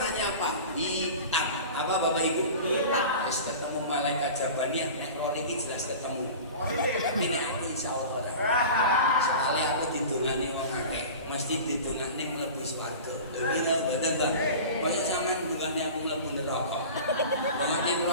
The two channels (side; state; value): both; inverted; correlation -0.36